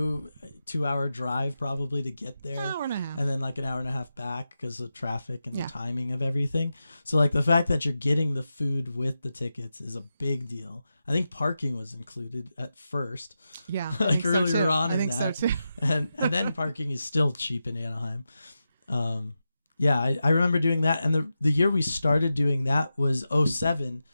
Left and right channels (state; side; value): inverted; both; correlation -0.90